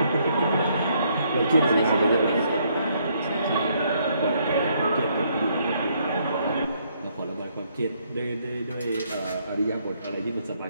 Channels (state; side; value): inverted; both; correlation -0.70